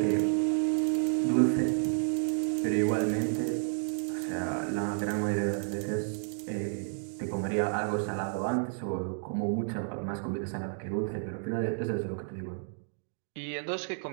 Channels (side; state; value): left; silent; digital silence